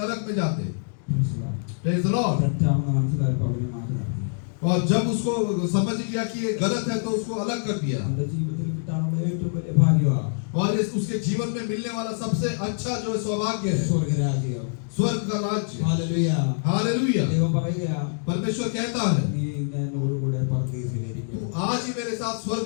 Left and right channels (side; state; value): right; silent; digital silence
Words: नरक में जाते। Praise the Lord। തെറ്റാണെന്ന് മനസ്സിലായപ്പോൾ അവനെ മാറ്റി നിർത്തി. और जब उसको समझ गया कि ये गलत है तो उसको अलग कर दिया। അവന്റെ ജീവിതത്തിൽ കിട്ടാനുള്ള ഏറ്റവും വലിയ ഭാഗ്യമാണ് और उसके जीवन में मिलने वाला सबसे अच्छा जो है सौभाग्य है സ്വർഗരാജ്യം. स्वर्ग का राज्य। ഹല്ലേലൂയ. हालेलुया। ദൈവം പറയുകയാ, परमेश्वर कहता है, നീ എന്നോട് കൂടെ പരദീസയിലിരിക്കും. तू आज ही मेरे साथ